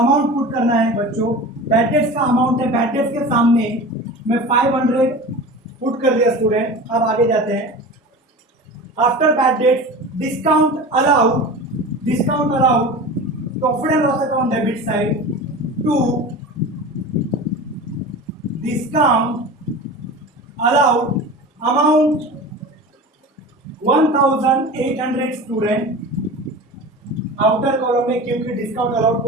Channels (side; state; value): both; normal; correlation 0.33